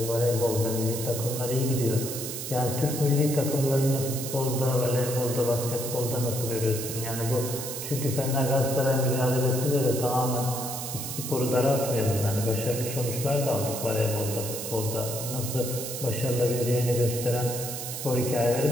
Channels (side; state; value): right; noise; hiss, 6 dB below the sound